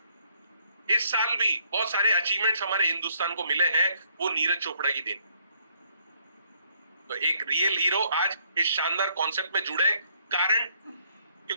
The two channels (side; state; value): both; inverted; correlation -0.69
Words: इस साल भी बहुत सारे अचीवमेंट्स हमारे हिंदुस्तान को मिले हैं, वो नीरज चोपड़ा की देन। तो एक रियल हीरो आज इस शानदार कॉन्सेप्ट में जुड़े, कारण